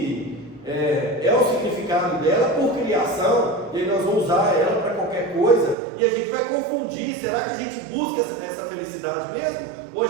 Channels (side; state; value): left; drops out; at 5.8 s